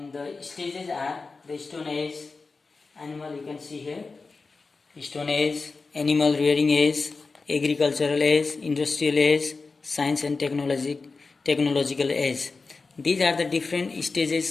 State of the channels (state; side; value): quieter; right; 4.1 dB